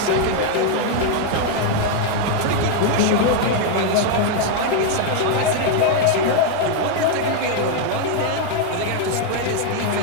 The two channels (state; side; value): different; both; correlation 0.00